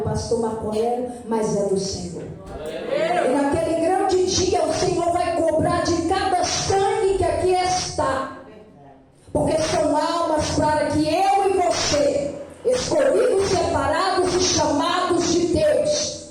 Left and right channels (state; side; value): identical; both; correlation 1.00